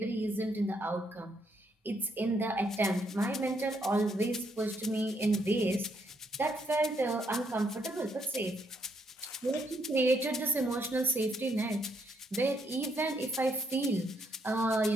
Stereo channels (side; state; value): both; normal; correlation 0.74